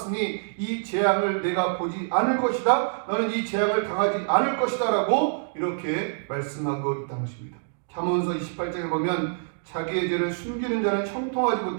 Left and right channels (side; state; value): left; silent; digital silence